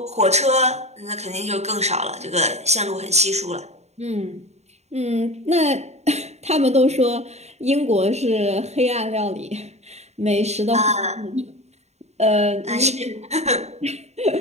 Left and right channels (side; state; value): left; late; 0.32 ms